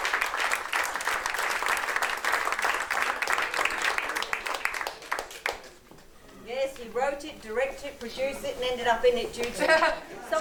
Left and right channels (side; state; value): both; identical; correlation 1.00